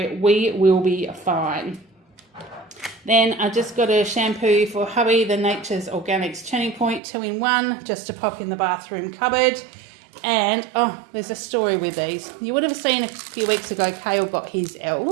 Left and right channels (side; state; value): left; drops out; at 7.0 s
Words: we will be fine. Then I just got a shampoo for hubby, the Nature's Organics Turning Point 2-in-1, just to pop in the bathroom cupboard. And, oh, there's a story with these. You would have seen a few weeks ago, Kale got his